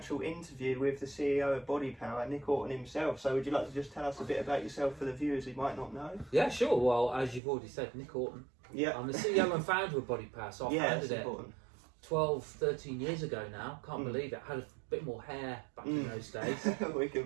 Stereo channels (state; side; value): drops out; left; at 7.4 s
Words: interview with the CEO of Bodypower, Nick Orton himself. So would you like to just tell us a bit about yourself for the viewers who might not know? Yeah, sure. Well, as you've already said, Nick Orton. Yeah. I'm the CEO and founder of Bodypower, so I founded it important. 12, 13 years ago now. Can't believe it. I had a bit more hair back in those days. We can